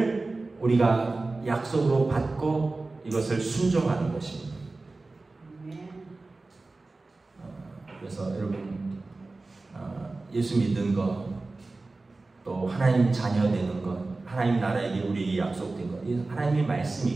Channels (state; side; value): quieter; left; 3.4 dB